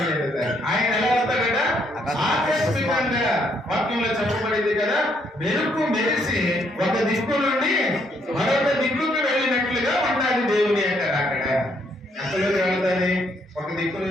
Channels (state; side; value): normal; both; correlation 0.71